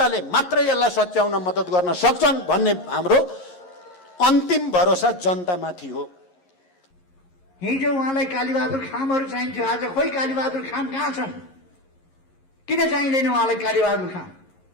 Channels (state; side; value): late; right; 11 ms